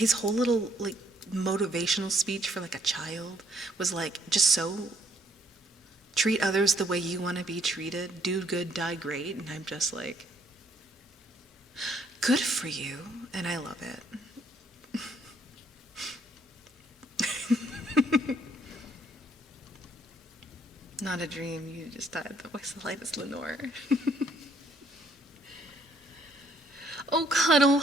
whole little like motivational speech for like a child was like just so treat others the way you want to be treated, do good, die great, and I'm just like, good for you, and I love it. Not a dream, you just died. The voice of light is Lenore. Oh, Cuddle,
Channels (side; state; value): both; normal; correlation 0.67